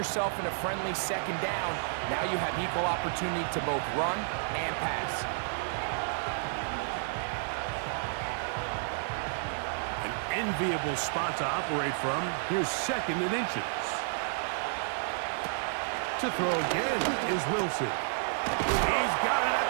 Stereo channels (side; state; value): left; silent; digital silence